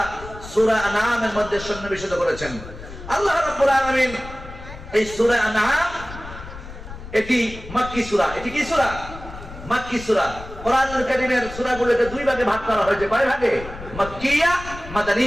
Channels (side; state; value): left; noise; rumble, 13 dB below the sound